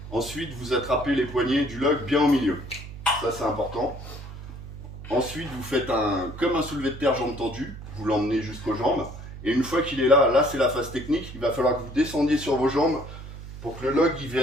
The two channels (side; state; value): right; noise; hum, 12 dB below the sound